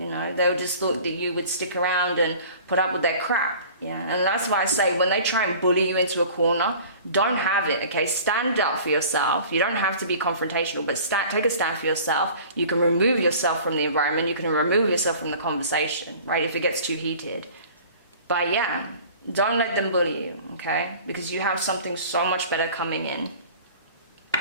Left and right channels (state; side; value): inverted; both; correlation -0.45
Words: know, they just thought that you would stick around and put up with their crap. Yeah, and that's why I say when they try and bully you into a corner, don't have it, okay? Stand up for yourself. You don't have to be confrontational, but take a stand for yourself. You can remove yourself from the environment. You can remove yourself from the conversation, right, if it gets too heated. But yeah, don't let them bully you, okay? Because you have something so much better coming in.